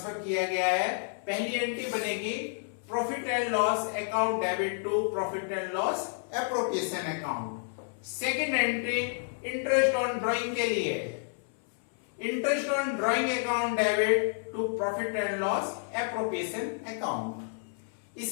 किया गया है। पहली एंट्री बनेगी profit and loss account debit to profit and loss appropriation account. Second entry interest on drawing के लिए interest on drawing account debit to profit and loss appropriation account.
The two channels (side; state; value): right; silent; 58 dB below the other